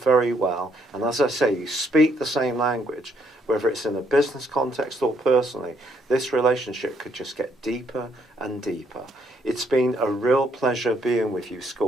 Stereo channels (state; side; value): normal; both; correlation 0.70